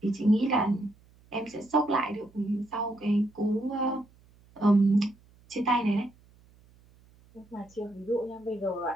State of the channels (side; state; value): right; noise; hum, 29 dB below the sound